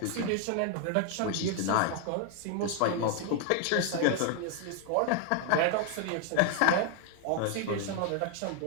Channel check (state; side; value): different; both; correlation 0.00